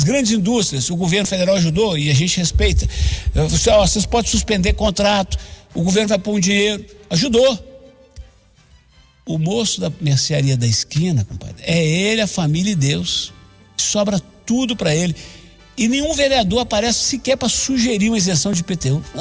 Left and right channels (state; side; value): identical; both; correlation 1.00